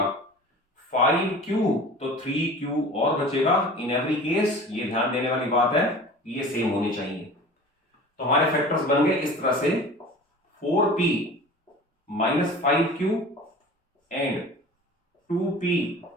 5q, तो 3q और बचेगा। इन एवरी केस ये ध्यान देने वाली बात है, ये सेम होने चाहिए। तो हमारे फैक्टर्स बन गए इस तरह से 4p minus 5q and 2p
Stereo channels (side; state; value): both; normal; correlation 0.40